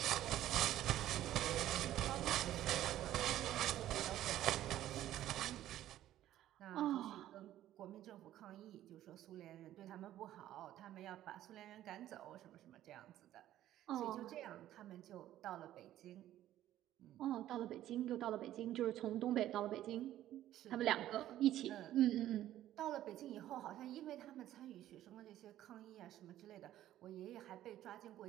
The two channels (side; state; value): left; quieter; 13.1 dB